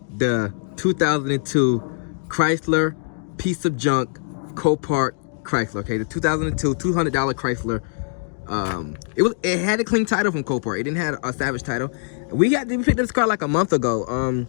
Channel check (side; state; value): right; silent; digital silence